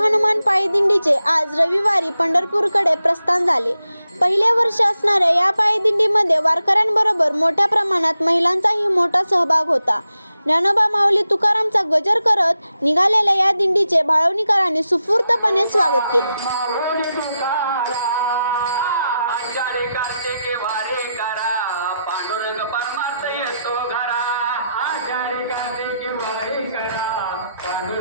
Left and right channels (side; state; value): both; inverted; correlation -0.86